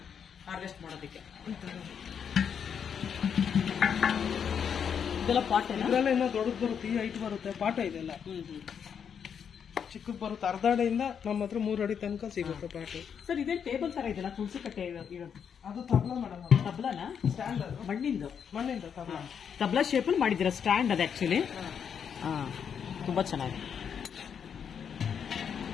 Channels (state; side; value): quieter; right; 7.5 dB